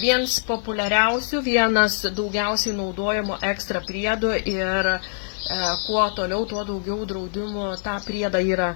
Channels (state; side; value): silent; right; 63 dB below the other